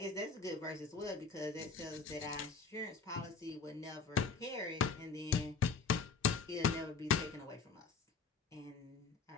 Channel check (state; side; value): quieter; right; 5.0 dB